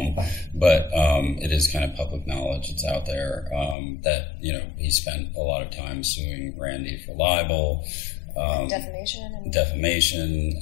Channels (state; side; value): drops out; right; at 3.8 s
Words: but it is kind of public knowledge. It's out there that, he spent a lot of time suing Randi for libel. Defamation,